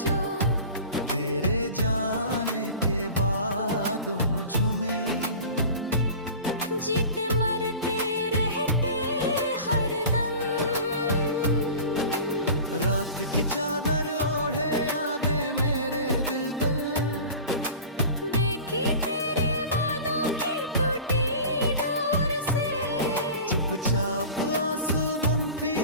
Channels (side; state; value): both; inverted; correlation -0.38